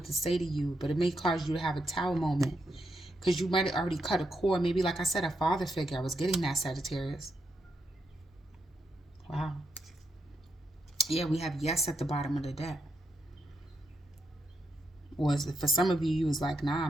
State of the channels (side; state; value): both; normal; correlation 0.82